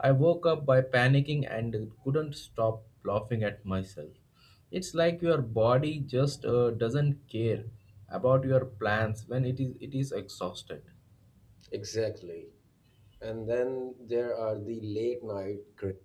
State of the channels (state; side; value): identical; both; correlation 1.00